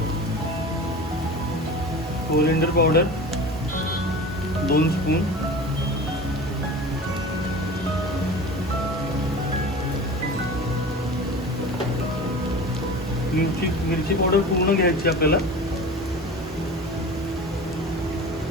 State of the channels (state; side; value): normal; both; correlation 0.35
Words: कोरिएंडर पावडर 2 स्पून, मिरची पावडर पूर्ण घ्यायची आपल्याला.